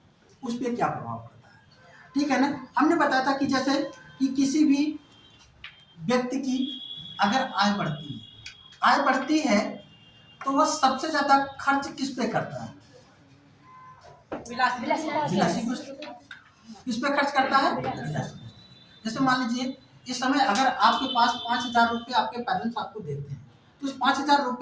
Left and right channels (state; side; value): identical; both; correlation 1.00